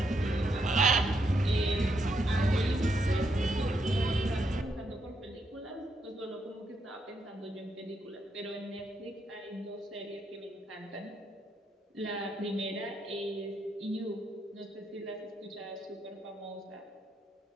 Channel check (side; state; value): both; normal; correlation 0.78